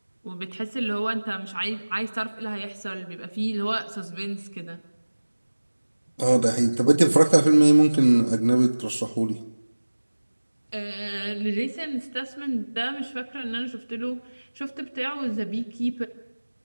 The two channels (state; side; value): inverted; both; correlation -1.00